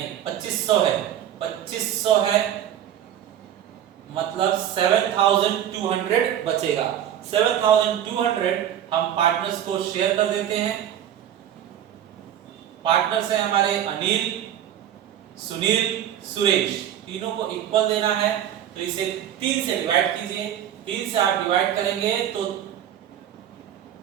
है। 2500 है, मतलब 7,200 बचेगा। 7,200 हम पार्टनर्स को शेयर कर देते हैं। पार्टनर्स हैं हमारे अनिल, सुनील, सुरेश, तीनों को इक्वल देना है। तो इसे 3 से डिवाइड कीजिए। 3 से आप डिवाइड करेंगे तो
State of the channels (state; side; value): quieter; left; 10.6 dB